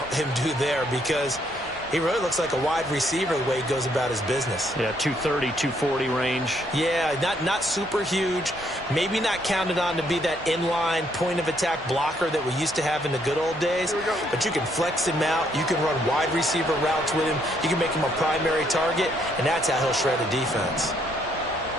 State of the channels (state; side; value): noise; right; hum, 25 dB below the sound